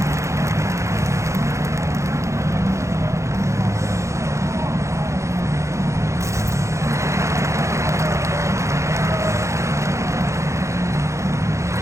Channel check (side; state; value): left; late; 0.14 ms